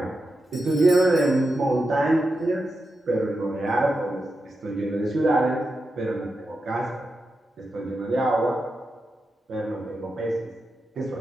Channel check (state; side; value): normal; both; correlation 0.88